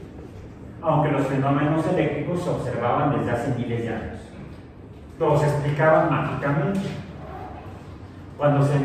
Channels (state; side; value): identical; both; correlation 1.00